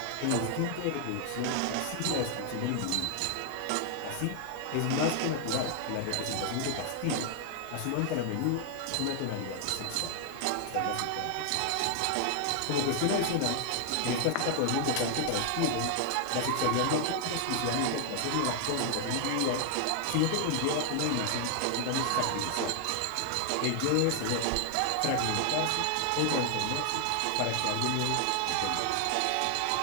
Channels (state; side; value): different; both; correlation 0.00